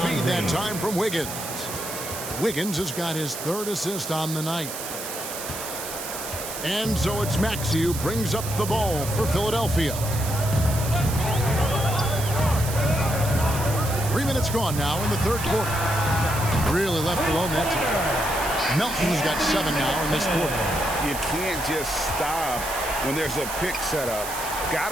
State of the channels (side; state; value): right; noise; hiss, 8 dB below the sound